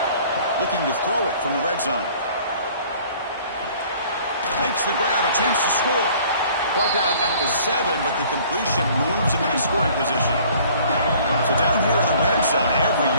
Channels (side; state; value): both; inverted; correlation -0.54